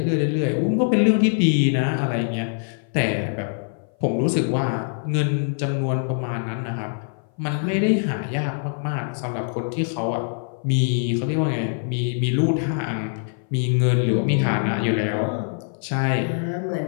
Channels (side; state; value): right; silent; 58 dB below the other